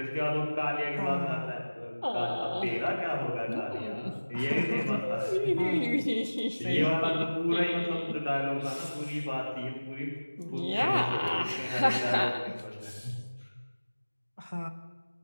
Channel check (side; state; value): both; inverted; correlation -1.00